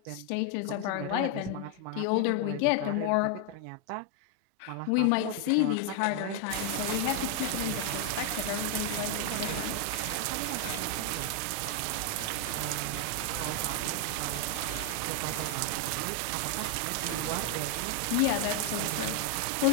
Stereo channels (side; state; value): both; different; correlation 0.00